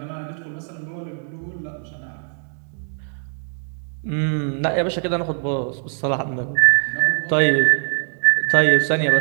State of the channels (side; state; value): left; silent; 56 dB below the other